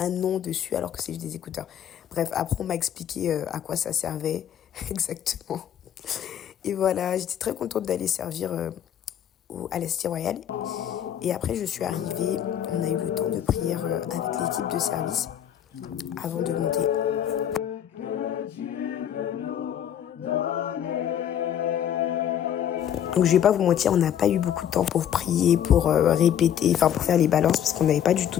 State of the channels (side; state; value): right; quieter; 9.8 dB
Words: nom dessus alors que c'est juste des écouteurs. Bref, après on m'a expliqué à quoi ça servait exactement. Et voilà, j'étais très contente d'aller servir à la Cité Royale. Et après je suis arrivée, on a eu le temps de prier avec l'équipe de service avant de monter. Donc je vais pas vous mentir, on n'a pas eu beaucoup de temps pour prier, pour répéter, enfin pour faire les balances parce qu'on n'avait pas du tout